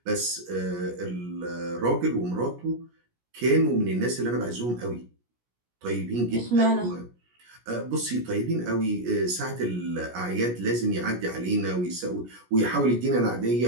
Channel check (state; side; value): late; left; 17 ms